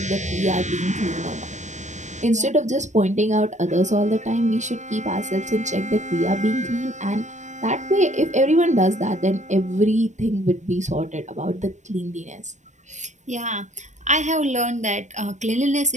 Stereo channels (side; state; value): left; late; 0.34 ms